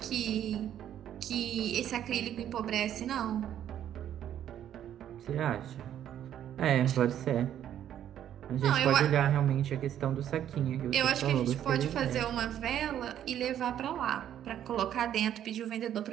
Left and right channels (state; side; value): quieter; left; 10.6 dB